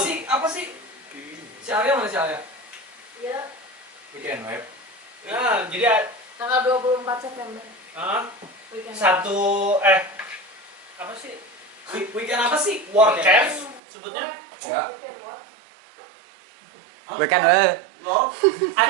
Apa sih? Si Arya mana si Arya? Ya, Weekend web. Nah, jadi tanggal 24 September. Weekend. apa sih? Weekend apa sih? Warcraft sebutnya. Ya. Weekend what? Weekend weh. Lo?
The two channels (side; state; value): left; drops out; at 13.8 s